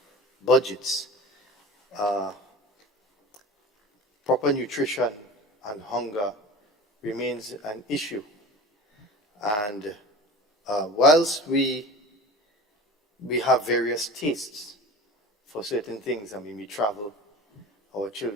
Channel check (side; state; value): both; normal; correlation 0.35